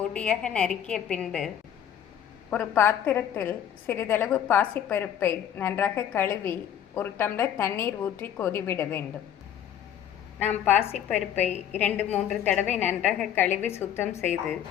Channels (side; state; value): right; quieter; 9.9 dB